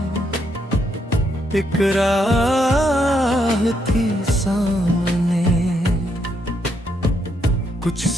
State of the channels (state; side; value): normal; both; correlation 0.76